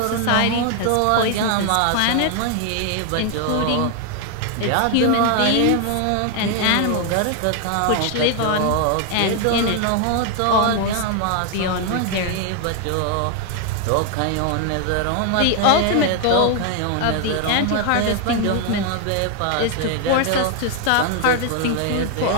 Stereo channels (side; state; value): both; different; correlation 0.00